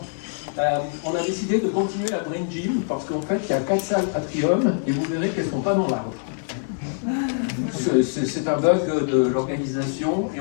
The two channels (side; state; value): right; silent; digital silence